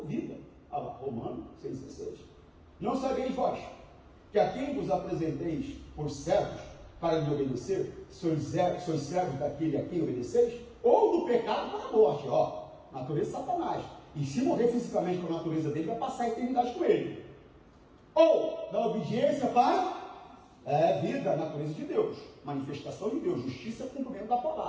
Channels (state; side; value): identical; both; correlation 1.00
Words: vida. Olha lá, Romanos 6,16. Não sabeis vós que a quem vos apresenteis por servos para lhe obedecer, sois servos daquele a quem obedeceis, ou do pecado para a morte, natureza de Satanás. E se morrer fisicamente com a natureza dele, vai passar a eternidade com ele. Ou da obediência para vida, a natureza de Deus, manifestação de Deus, justiça, cumprimento da